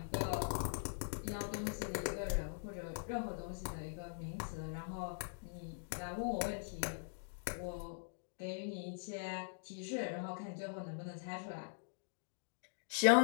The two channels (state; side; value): silent; right; digital silence